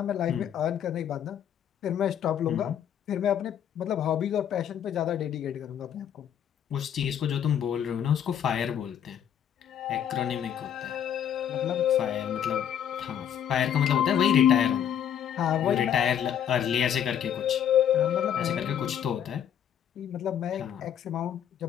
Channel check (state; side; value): quieter; right; 9.3 dB